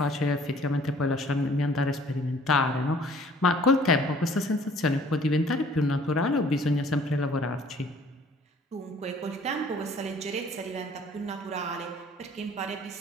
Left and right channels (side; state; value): both; normal; correlation 0.54